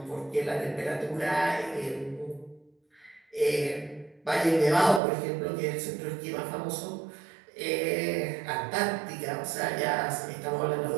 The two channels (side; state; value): left; drops out; at 5.0 s